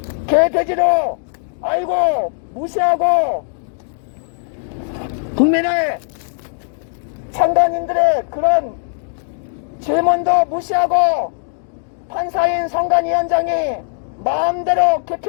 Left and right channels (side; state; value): right; silent; digital silence